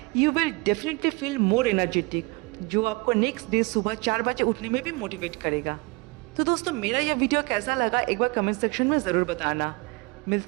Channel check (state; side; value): quieter; left; 26.7 dB